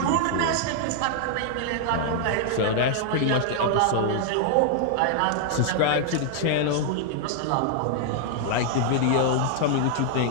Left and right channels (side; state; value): both; different; correlation 0.00